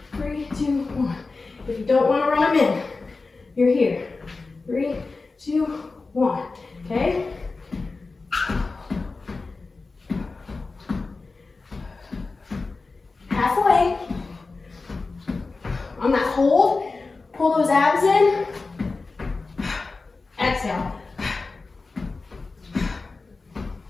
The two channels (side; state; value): right; quieter; 3.9 dB